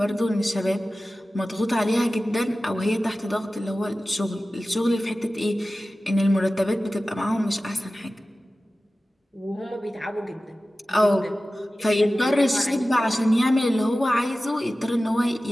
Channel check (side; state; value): both; normal; correlation 0.96